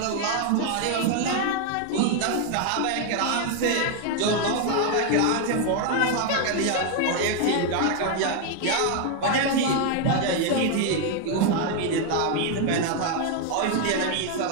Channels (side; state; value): both; different; correlation 0.01